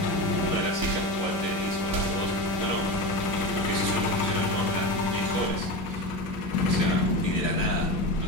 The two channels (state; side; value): late; right; 11 ms